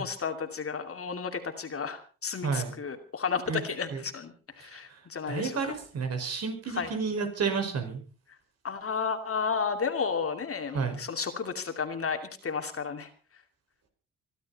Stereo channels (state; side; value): normal; both; correlation -0.03